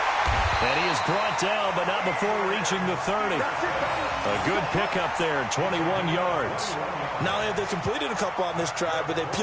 And he is brought down, but not before reaching the 30. A good pickup there, 21 yards. Not only have they completed a couple on this drive, but they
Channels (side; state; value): both; identical; correlation 1.00